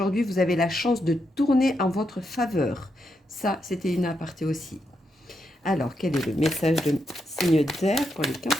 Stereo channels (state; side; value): normal; both; correlation 0.82